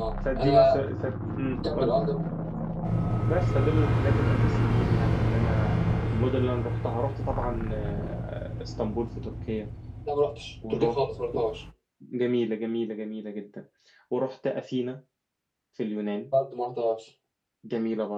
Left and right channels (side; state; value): both; identical; correlation 1.00